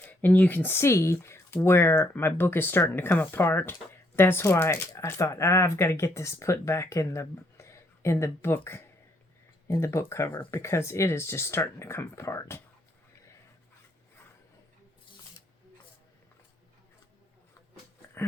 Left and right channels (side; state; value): both; normal; correlation 0.71